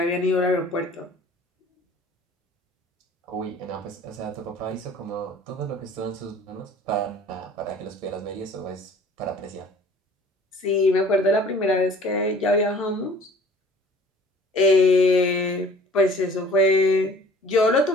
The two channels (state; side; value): normal; both; correlation 0.51